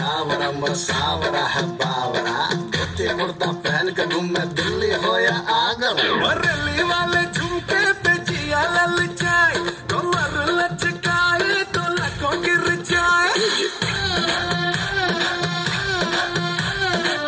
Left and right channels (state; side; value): identical; both; correlation 1.00